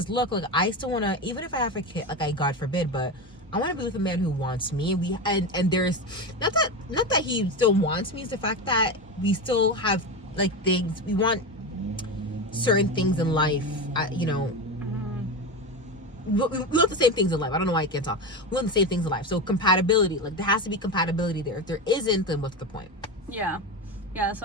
look, like I still wanna, even if I have a kid, like I God forbid, but I want to be with a man who wants me. And there's not that he still wants me. It's the fact that we still have like things we want, certain things in life. We want the same things in life. I don't know why I can't talk. We want the same things in life. So compatibility, like there has to be compatibility there. If there isn't, then what's the point? Yeah.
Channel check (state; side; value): normal; both; correlation 0.20